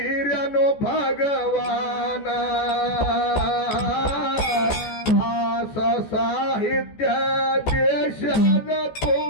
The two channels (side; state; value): right; late; 14 ms